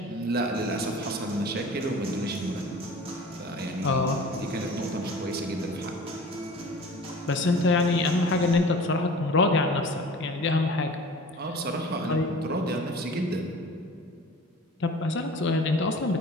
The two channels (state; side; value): normal; both; correlation 0.42